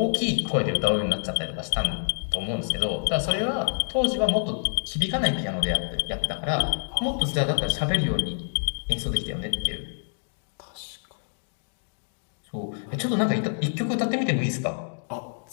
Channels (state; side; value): silent; right; 60 dB below the other